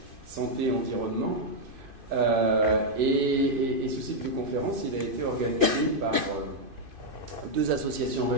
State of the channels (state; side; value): late; left; 2.5 ms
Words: Santé Environnement. Et ce cycle de conférences, il a été organisé par deux associations